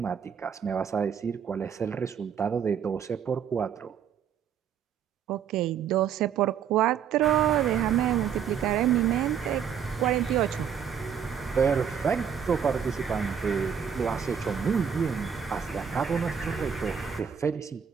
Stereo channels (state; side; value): quieter; left; 7.8 dB